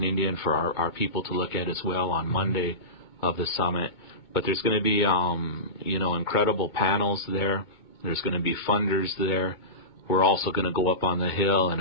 Indian for our people to look at as well on Monday of the summit. But there's going to be, incredible panels there. There's going to be funders there. We're also going to go up on the Hill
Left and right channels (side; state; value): right; late; 2.2 ms